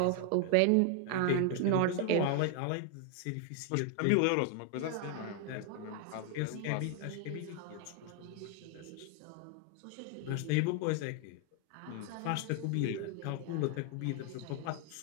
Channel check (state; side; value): different; both; correlation 0.01